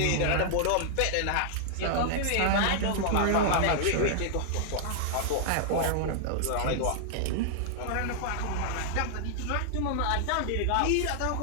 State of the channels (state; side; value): different; both; correlation -0.01